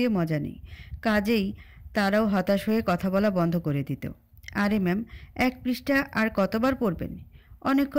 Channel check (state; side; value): identical; both; correlation 1.00